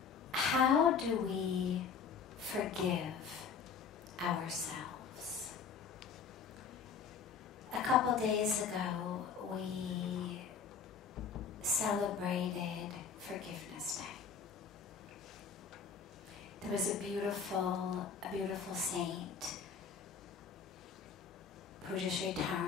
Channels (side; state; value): right; quieter; 6.2 dB